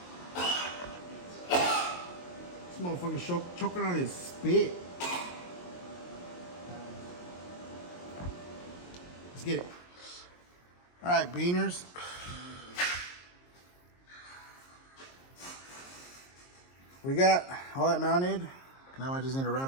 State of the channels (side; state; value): right; late; 22 ms